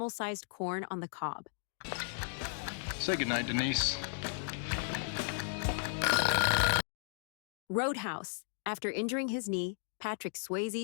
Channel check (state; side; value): silent; right; digital silence